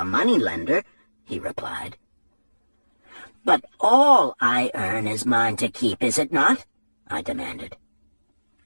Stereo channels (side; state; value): both; inverted; correlation -1.00